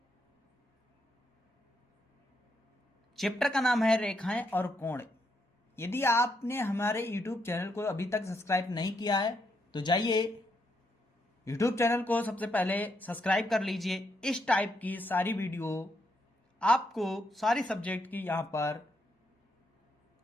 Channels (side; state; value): both; normal; correlation 0.78